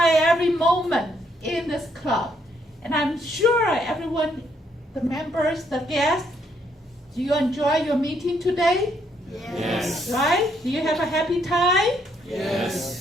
moment in this club. And I'm sure everyone, the members, the guests, do you enjoy your meeting today? Yes. Right? Do you have a happy time?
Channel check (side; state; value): both; normal; correlation 0.72